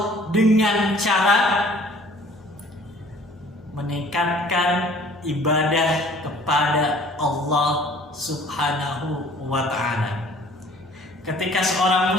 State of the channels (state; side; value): normal; both; correlation 0.53